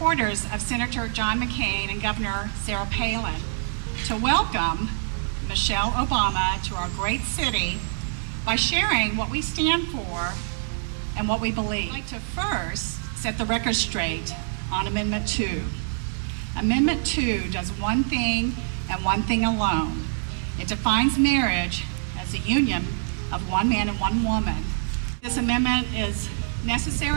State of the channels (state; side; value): silent; left; digital silence